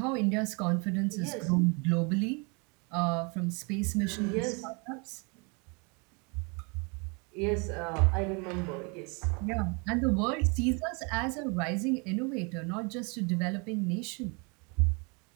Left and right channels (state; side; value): quieter; left; 32.3 dB